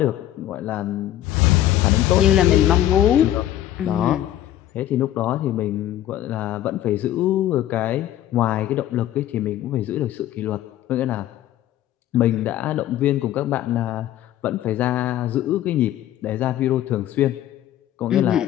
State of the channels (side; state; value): right; quieter; 12.8 dB